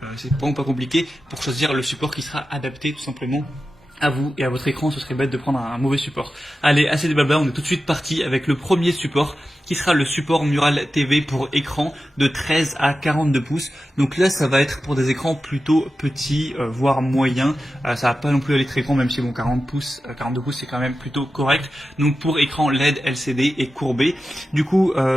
C'est vraiment pas compliqué pour choisir le support qui sera adapté tout simplement à vous et à votre écran. Ce serait bête de prendre un mauvais support. Allez, assez de blabla, on est tout de suite parti avec le premier support qui sera le support Mural TV pour écran de 13 à 42 pouces. Donc là, ça va être pour des écrans plutôt petits, voire moyens. Ça va pas non plus aller très grand, même si bon, 40 pouces, 42 pouces, c'est quand même plutôt correct. Donc pour écran LED, LCD et courbé. Du coup,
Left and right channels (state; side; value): normal; both; correlation 0.93